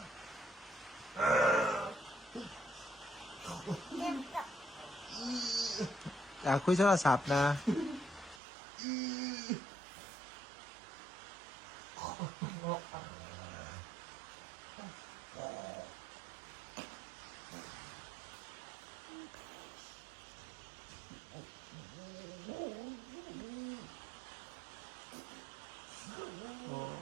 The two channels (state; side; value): drops out; left; at 8.4 s